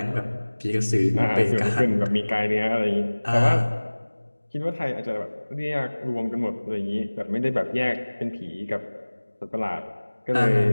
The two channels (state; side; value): inverted; both; correlation -1.00